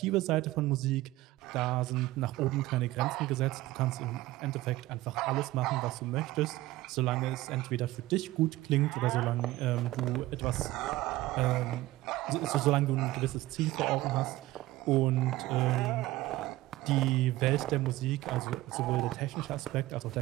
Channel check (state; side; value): quieter; left; 17.3 dB